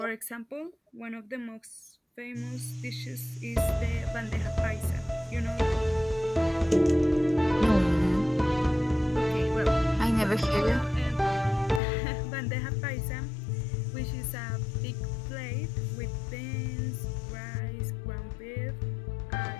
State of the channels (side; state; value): right; drops out; at 11.8 s